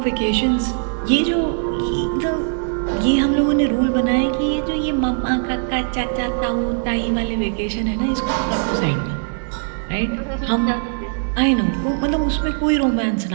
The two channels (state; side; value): silent; left; digital silence